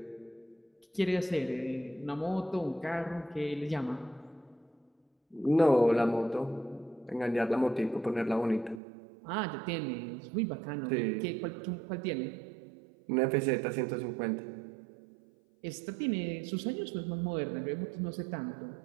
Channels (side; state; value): left; drops out; at 8.8 s